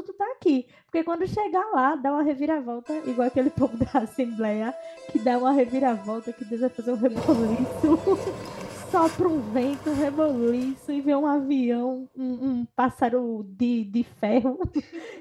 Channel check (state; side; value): identical; both; correlation 1.00